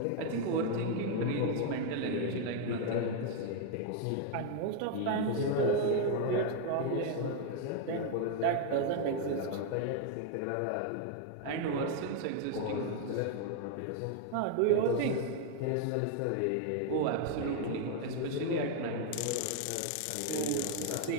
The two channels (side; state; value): both; different; correlation 0.01